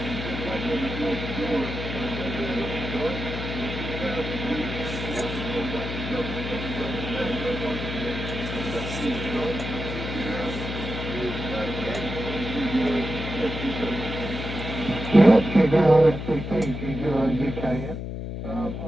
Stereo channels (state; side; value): noise; left; hum, 5 dB below the sound